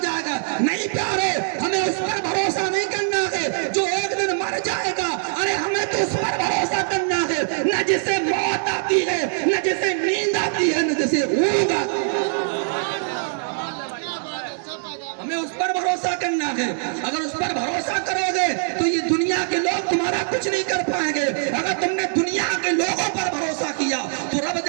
جائے گا۔ نہیں پیارے، ہمیں اس پر بھروسہ نہیں کرنا ہے جو ایک دن مر جائے گا، ارے ہمیں تو اس پر بھروسہ کرنا ہے نہ جسے موت آتی ہے، نہ جسے نیند آتی ہے، نہ جسے اونگ آتی ہے، ہمیں اس پر بھروسہ کرنا ہے۔ اگر اس پر بھروسہ کرو گے تو یہ دنیا کے لوگ تمہارا کچھ نہیں کر پائیں گے۔ اگر تم نے دنیا کے لوگوں پر بھروسہ کیا تو رب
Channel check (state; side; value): silent; left; 63 dB below the other